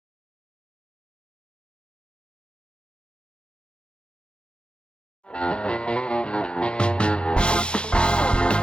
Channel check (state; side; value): late; right; 0.053 ms